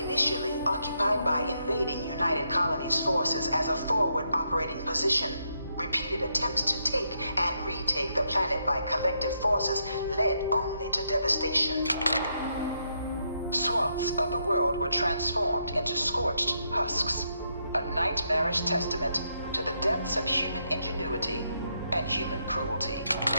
occupied by invading United Colonies forces as a forward operating position, repeated attempts to take and retake the planet by collective forces led only to devastation. Swaths of the world were transformed into scorched husks, a nightmarish testament to the depths of human ingenuity and human cruelty.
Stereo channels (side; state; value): both; inverted; correlation -0.78